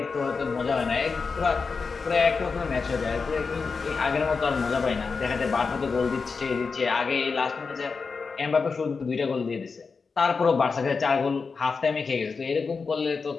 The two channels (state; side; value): quieter; right; 4.8 dB